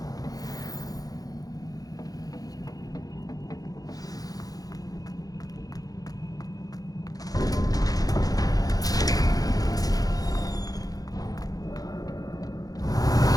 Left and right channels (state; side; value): late; right; 0.18 ms